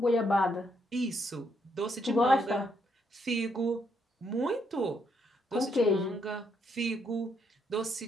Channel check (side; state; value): both; normal; correlation 0.75